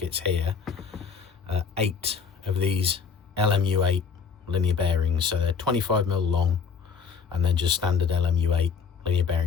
here 8 of these LMU8 linear bearings. So they're 25mm long and then just standard LMU8 linear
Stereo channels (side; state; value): right; quieter; 6.1 dB